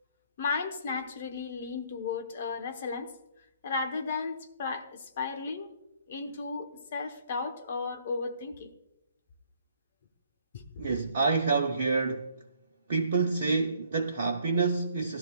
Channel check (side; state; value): both; inverted; correlation -0.64